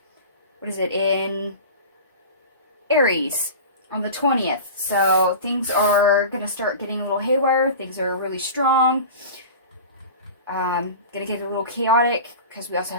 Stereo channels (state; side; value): inverted; both; correlation -0.34